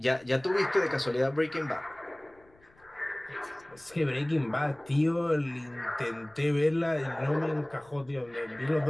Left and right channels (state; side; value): noise; left; rumble, 30 dB below the sound